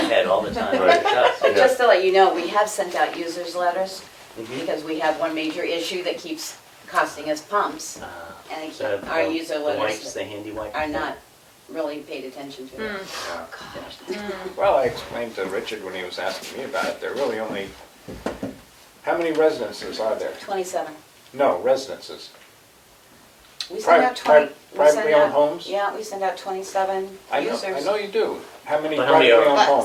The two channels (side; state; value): both; identical; correlation 1.00